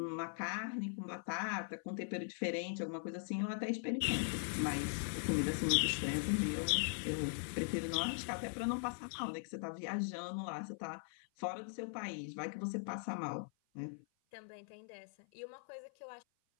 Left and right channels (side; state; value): right; silent; 51 dB below the other